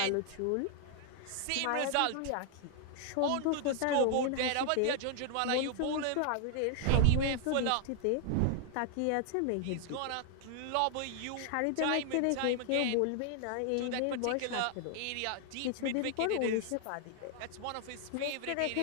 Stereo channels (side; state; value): both; different; correlation 0.00